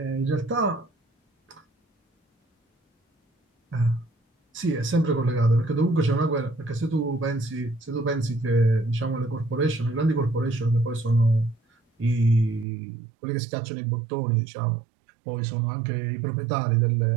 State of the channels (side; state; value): left; drops out; at 12.7 s